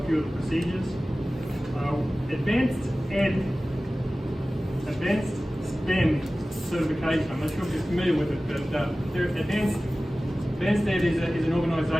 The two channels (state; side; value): normal; both; correlation 0.97